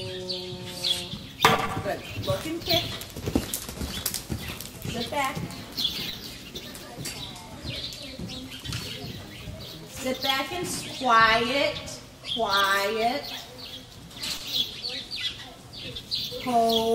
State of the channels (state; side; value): identical; both; correlation 1.00